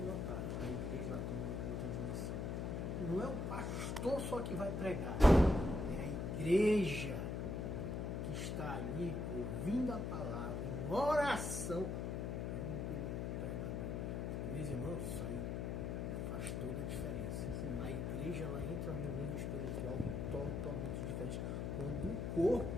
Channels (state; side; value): noise; left; hum, 2 dB below the sound